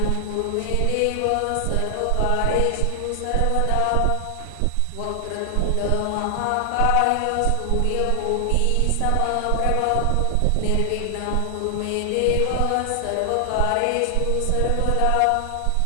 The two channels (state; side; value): different; both; correlation 0.00